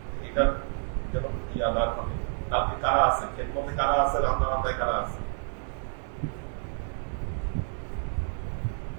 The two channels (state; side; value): silent; left; 58 dB below the other